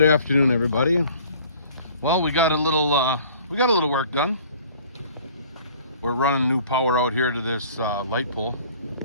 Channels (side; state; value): both; inverted; correlation -0.51